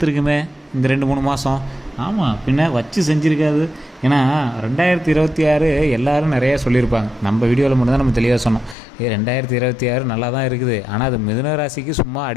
இந்த 2-3 மாதம். ஆமாம், பின்ன வச்சு செஞ்சுருக்காது. ஏன்னா 2026 எல்லோரும் நிறையா சொல்லியிருப்பாங்க. நம்ம வீடியோவில் மட்டும்தான் நம்ம தெளிவாக சொன்னோம். 2026 நல்லா தான் இருக்குது. ஆனால் அது மிதுன ராசிக்கு சும்மா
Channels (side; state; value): right; drops out; at 8.8 s